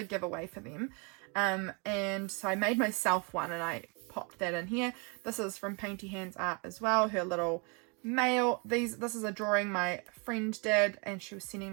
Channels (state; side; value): quieter; left; 33.1 dB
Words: giveaway for them. And so I made myself one, and I popped that in here. This is from Paintyhandsart as well, her little mail. This is a drawing my friend did, and she was sending